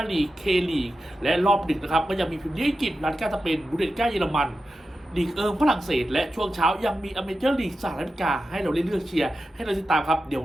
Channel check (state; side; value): normal; both; correlation 0.91